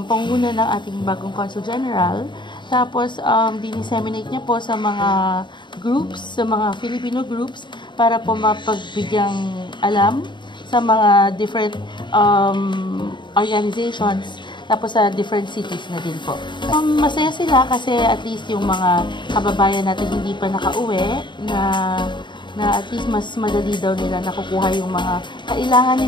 pangunguna ng ating bagong Consul General. Tapos dinisseminate niya po sa mga groups, sa mga Filipino groups para po mapagbigyang alam sa mga different organizations. Tapos sa different cities na din po. Masaya sila kasi at least yung mga kababayan natin hindi pa nakauwi na at least mas madali daw nila nakukuha yung mga kailangan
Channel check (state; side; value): late; right; 0.23 ms